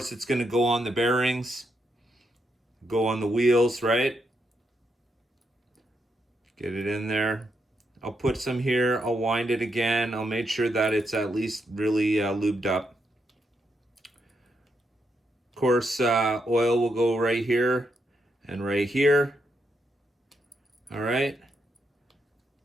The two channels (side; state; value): both; normal; correlation 0.80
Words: it's going to go on the bearings, go on the wheels, right? Get it in there. I'll put some here, I'll wind it again. I'll make sure that it's at least really lubed up. Of course, oil will go right here and right here. All right.